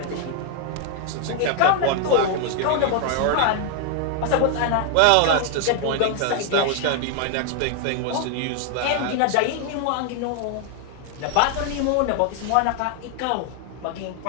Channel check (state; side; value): different; both; correlation 0.00